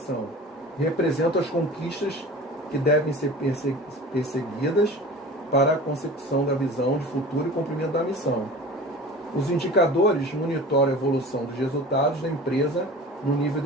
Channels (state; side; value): normal; both; correlation 0.39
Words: Representam as conquistas que devem ser perseguidas para a consecução da visão de futuro e cumprimento da missão. Os indicadores monitoram a evolução dos resultados da empresa no nível